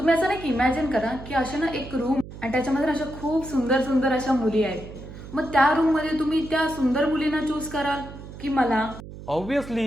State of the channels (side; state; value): right; noise; hum, 14 dB below the sound